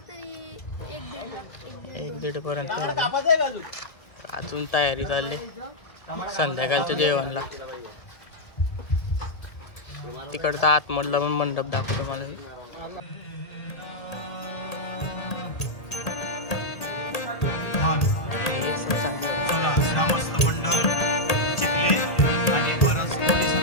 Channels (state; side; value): late; right; 1.8 ms